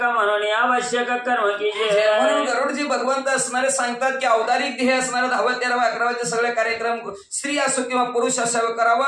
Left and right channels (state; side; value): identical; both; correlation 1.00